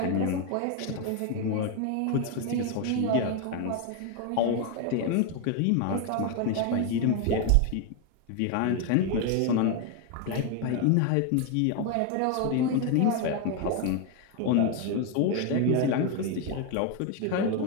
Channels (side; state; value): both; different; correlation 0.01